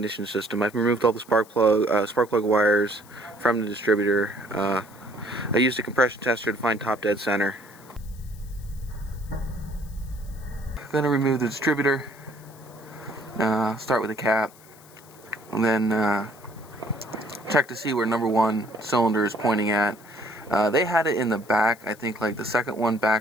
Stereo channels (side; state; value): left; noise; hiss, 24 dB below the sound